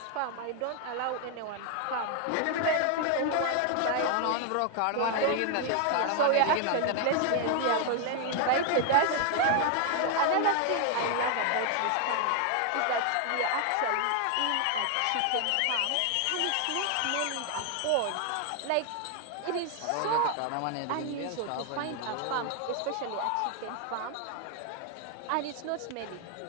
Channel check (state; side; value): different; both; correlation 0.00